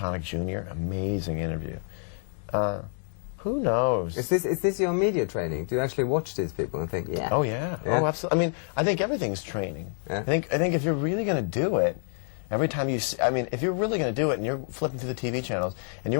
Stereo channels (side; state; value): right; silent; 60 dB below the other